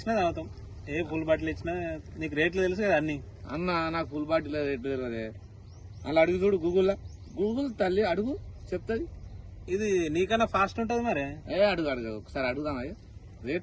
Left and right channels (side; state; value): both; identical; correlation 1.00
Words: తాగుతాం. ఏ ఫుల్ బాటిల్ ఇచ్చినా నీకు రేట్లు తెలుసు కదా అన్ని. అన్న నాకు ఫుల్ బాటిల్ రేట్లు తెలియదే. అలా అడుగు చూడు గూగుల్ తల్లి అడుగు చెప్తుంది. ఇది నీకన్నా ఫాస్ట్ ఉంటది మరి. అడుగు ఒకసారి అడుగుదాం.